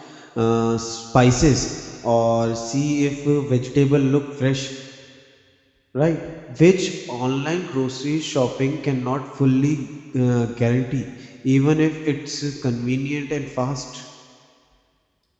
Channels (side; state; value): both; identical; correlation 1.00